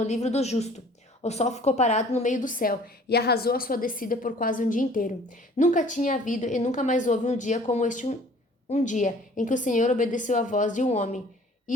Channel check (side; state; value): both; normal; correlation 0.52